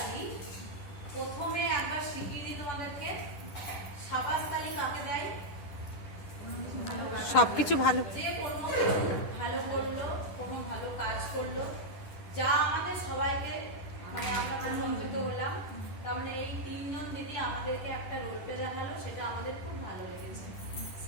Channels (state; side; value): late; right; 10 ms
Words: প্রথমে একবার শিখিয়ে দিই তোমাদেরকে, সাবাস তালি কাকে দেয়? সবকিছু ভালো, যে কোনো ভালো করলো, কোনো ভালো কাজ করলো, যা আমাদের সবাইকে মানে আমরা প্রশংসিত হলাম। তার মানে এই তিনজন দিদি আমাদেরকে একটা রোল প্লে দেখালো, সেটা আমাদের খুব ভালো লেগেছে।